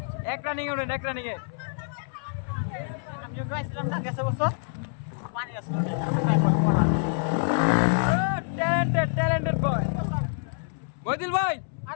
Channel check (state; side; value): silent; right; 59 dB below the other